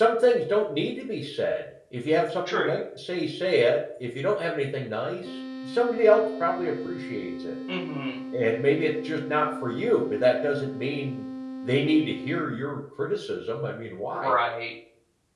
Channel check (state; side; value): identical; both; correlation 1.00